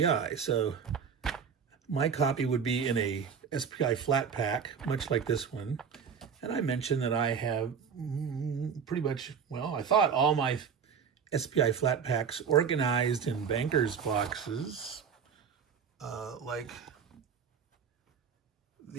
So my copy would be in a SPI flat pack, much like this one. And I mentioned that I have pretty much, well, I thought all my SPI flat packs organized in bankers boxes, like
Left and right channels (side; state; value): left; quieter; 6.7 dB